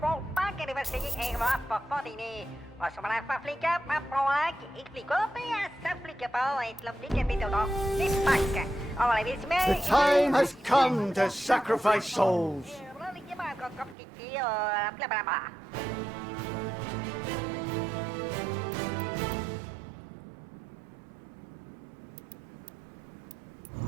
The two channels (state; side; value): drops out; left; at 14.0 s